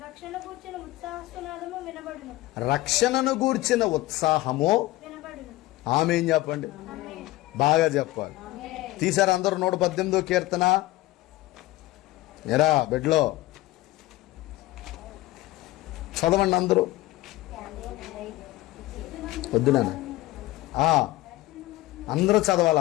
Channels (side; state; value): right; quieter; 17.7 dB